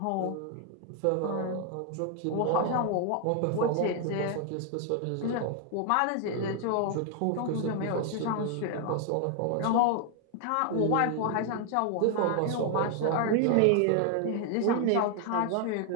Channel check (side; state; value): both; different; correlation 0.00